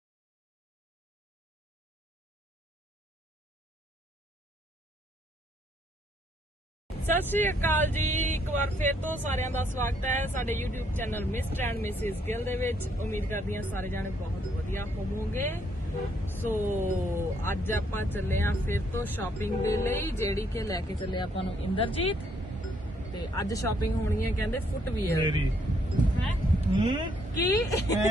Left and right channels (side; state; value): both; normal; correlation 0.70